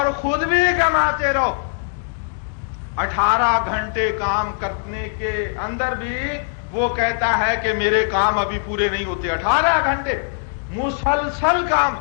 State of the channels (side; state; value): right; silent; digital silence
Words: خود بھی کماتے رہو۔ 18 گھنٹے کام کرنے کے اندر بھی وہ کہتا ہے کہ میرے کام ابھی پورے نہیں ہوتے، 18 گھنٹے مسلسل کام،